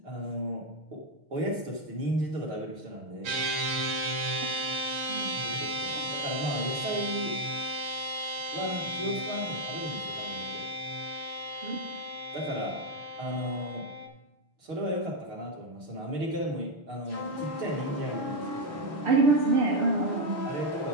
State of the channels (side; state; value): left; late; 7.1 ms